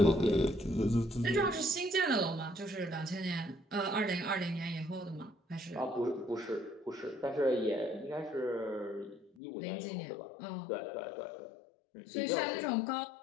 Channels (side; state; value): right; drops out; at 9.3 s